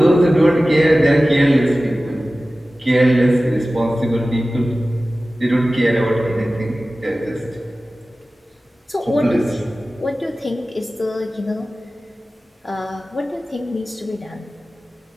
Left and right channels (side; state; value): both; normal; correlation 0.96